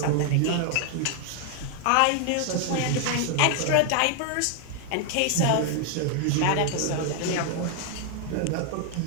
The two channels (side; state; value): both; different; correlation 0.00